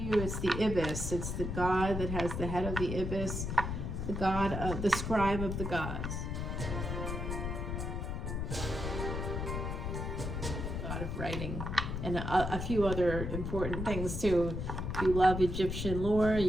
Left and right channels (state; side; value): noise; left; rumble, 3 dB below the sound